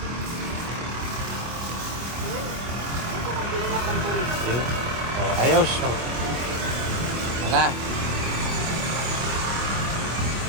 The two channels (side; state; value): left; late; 25 ms